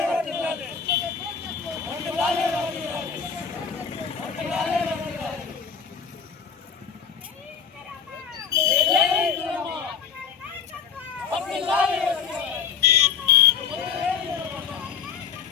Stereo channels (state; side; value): quieter; right; 7.0 dB